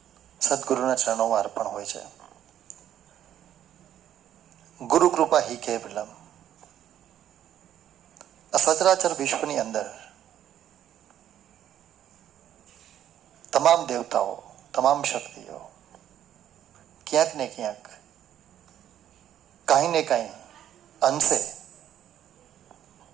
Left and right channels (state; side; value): quieter; left; 10.9 dB